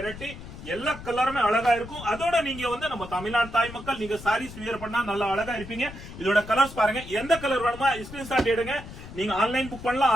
எல்லா கலருமே அழகா இருக்கும். அதோட நீங்க வந்து நம்ம தமிழ்நாடு தாய் மக்கள் நீங்க சாரீஸ் வியர் பண்ணா நல்லா அழகா இருப்பீங்க. இதோட கலர்ஸ் பாருங்க. எந்த கலர் வேணுமா ஸ்கிரீன்ஷாட் எடுங்க. நீங்க ஆன்லைன் புக் பண்ணலாம்,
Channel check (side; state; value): left; noise; rumble, 14 dB below the sound